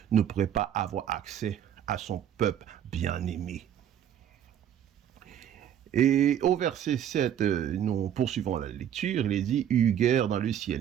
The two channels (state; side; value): quieter; left; 10.0 dB